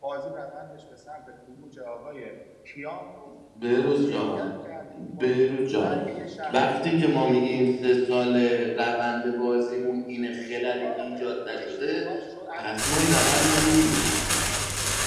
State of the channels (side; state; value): both; identical; correlation 1.00